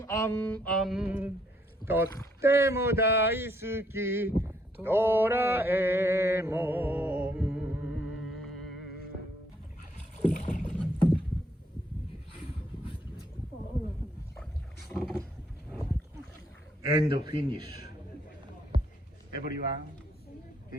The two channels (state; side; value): normal; both; correlation 0.70